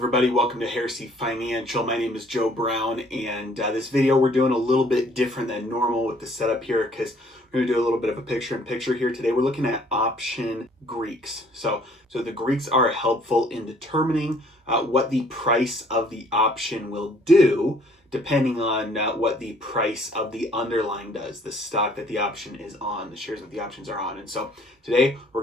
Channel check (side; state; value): both; normal; correlation 0.59